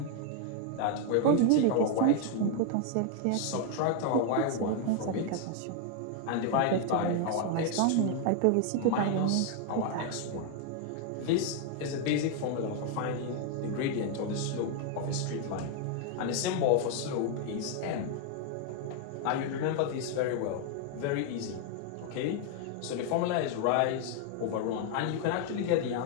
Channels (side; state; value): both; different; correlation 0.00